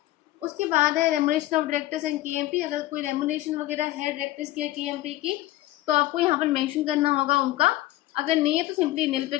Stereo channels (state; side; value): quieter; right; 16.1 dB